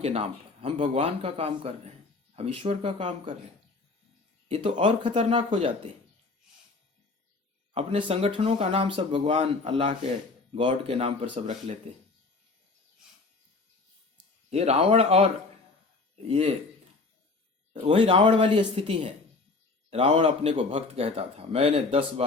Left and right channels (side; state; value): right; quieter; 3.8 dB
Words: के नाम पर हम भगवान का काम कर रहे हैं, हम ईश्वर का काम कर रहे हैं, ये तो और खतरनाक हो जाते हैं। अपने संगठनों का नाम सब भगवान, अल्लाह के, गॉड के नाम पर सब रख लेते हैं। ये रावण, और ये वही रावण वाली स्थिति है। रावण अपने को भक्त कहता था, मैंने 10